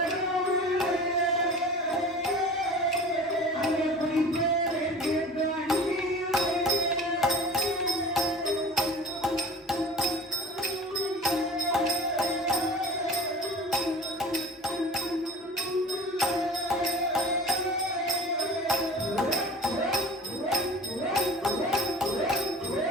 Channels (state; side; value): normal; both; correlation 0.39